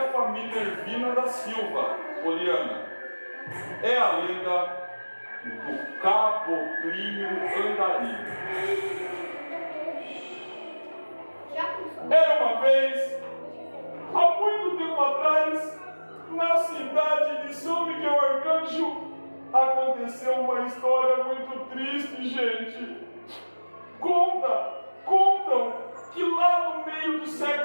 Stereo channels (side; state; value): both; inverted; correlation -1.00